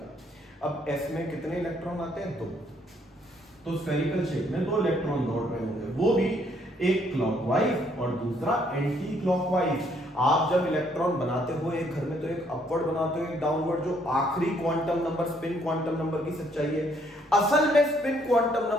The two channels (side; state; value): both; normal; correlation 0.67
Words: अब s में कितने इलेक्ट्रॉन आते हैं, 2। तो स्फेरिकल शेप में 2 इलेक्ट्रॉन दौड़ रहे होंगे, वो भी एक क्लॉकवाइज और दूसरा एंटी क्लॉकवाइज। आप जब इलेक्ट्रॉन बनाते हो एक घर में, तो एक अपवर्ड बनाते हो, एक डाउनवर्ड। जो आखिरी quantum number, spin quantum number की सच्चाई है। असल में स्पिन क्वांटम